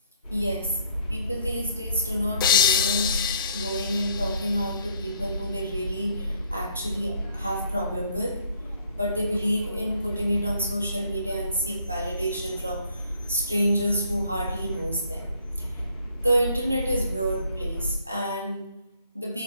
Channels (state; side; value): inverted; both; correlation -0.63